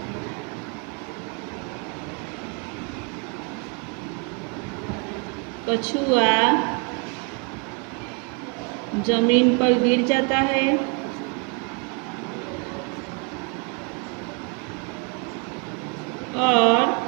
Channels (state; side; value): quieter; left; 32.9 dB